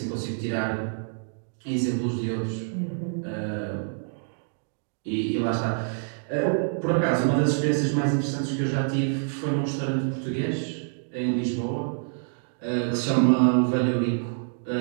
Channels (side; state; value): left; silent; digital silence